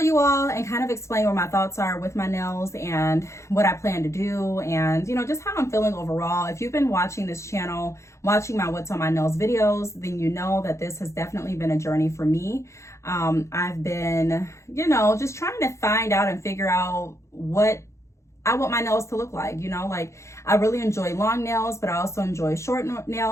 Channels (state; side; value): late; right; 0.14 ms